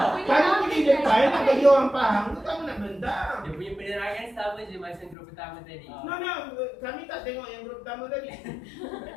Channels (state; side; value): drops out; right; at 5.2 s